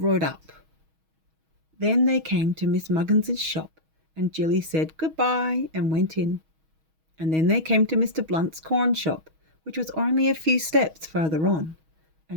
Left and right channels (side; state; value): left; late; 6.3 ms